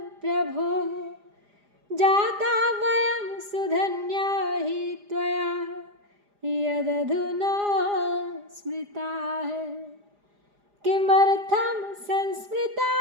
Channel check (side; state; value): left; late; 4.9 ms